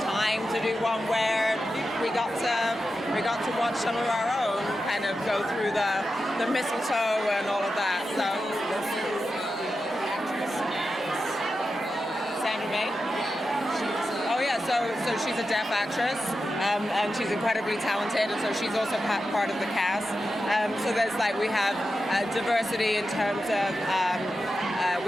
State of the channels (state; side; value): normal; both; correlation 0.90